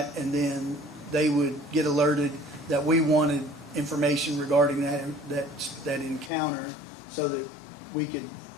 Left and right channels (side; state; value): right; drops out; at 6.3 s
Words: and then they would get alerted that we wanted information regarding that encounter so that we could